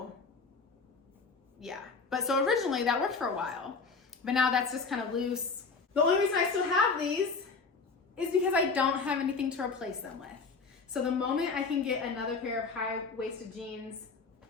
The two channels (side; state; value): right; quieter; 4.6 dB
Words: yeah, but so originally that worked for a while, but now that's just kind of loose. The only reason I still have these is because I don't have anything to replace them with. So the moment I can get another pair of high-waisted jeans,